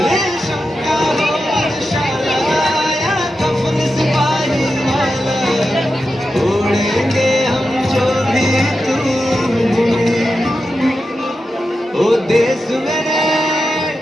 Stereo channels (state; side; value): normal; both; correlation 0.90